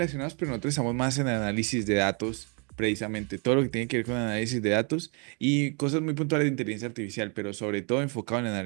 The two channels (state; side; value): quieter; left; 36.0 dB